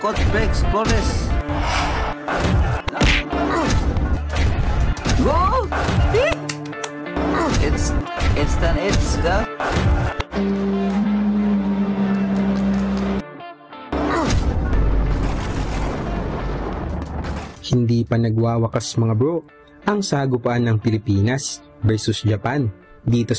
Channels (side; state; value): both; identical; correlation 1.00